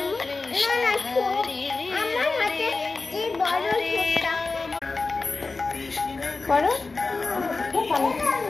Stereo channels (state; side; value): quieter; right; 3.8 dB